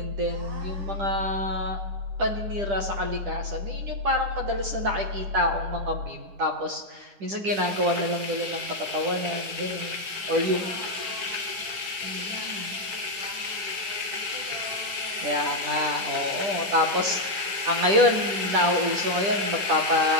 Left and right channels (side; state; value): left; late; 9.8 ms